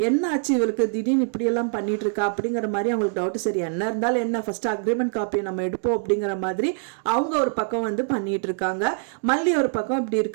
என்ன ஆச்சு இவருக்கு திடீர்னு இப்படியெல்லாம் பண்ணிட்டு இருக்கா அப்படிங்கிற மாதிரி அவங்களுக்கு டவுட். சரி என்ன இருந்தாலும் என்ன, ஃபர்ஸ்ட் அக்ரிமெண்ட் காப்பியை நம்ம எடுப்போம் அப்படிங்கிற மாதிரி அவங்க ஒரு பக்கம் வந்து பண்ணிட்டு இருக்காங்க. மல்லி ஒரு பக்கம் இப்படி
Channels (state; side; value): silent; left; 63 dB below the other